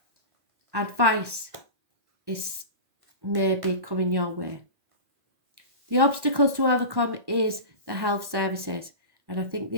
Advice is maybe coming your way. The obstacles to overcome is the health services. And I think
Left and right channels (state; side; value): late; left; 1.1 ms